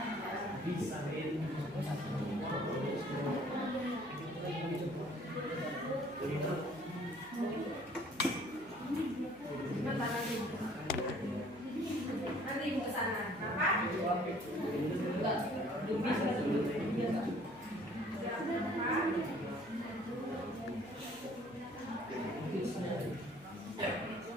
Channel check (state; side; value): noise; left; hum, 25 dB below the sound